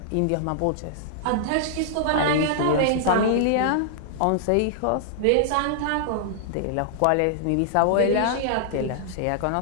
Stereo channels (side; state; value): both; different; correlation -0.01